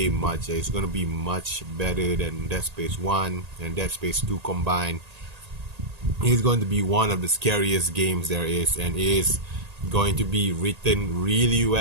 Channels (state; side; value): late; left; 1.8 ms